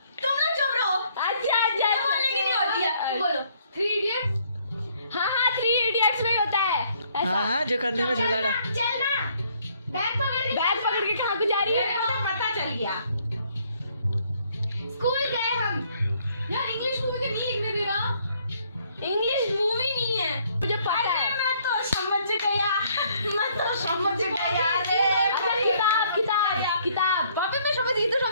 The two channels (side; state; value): both; inverted; correlation -0.65